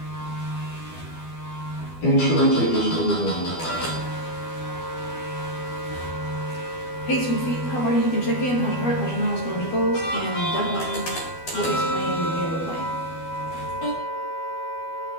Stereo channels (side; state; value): right; late; 12 ms